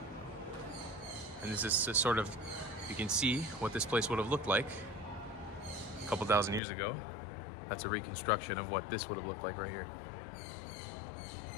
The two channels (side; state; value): right; drops out; at 6.6 s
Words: And this is sort of, you can see what this place would have looked like a couple thousand years ago. That's a reconstruction of what this would have looked like right here